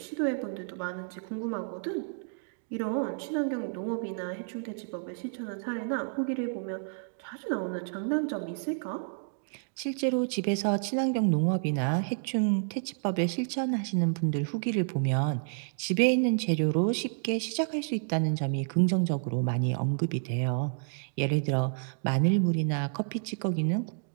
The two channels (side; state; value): left; silent; digital silence